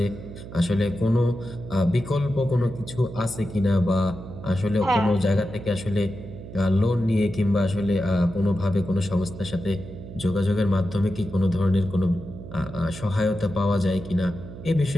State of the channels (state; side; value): noise; right; hum, 12 dB below the sound